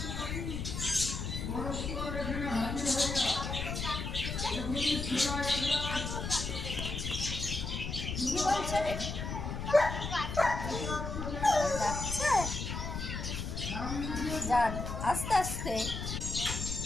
কি বলছেন? যাচ্ছে, যান আস্তে আস্তে।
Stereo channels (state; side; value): noise; left; rumble, 4 dB below the sound